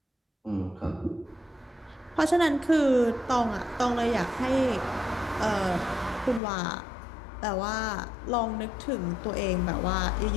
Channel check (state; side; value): drops out; right; at 6.4 s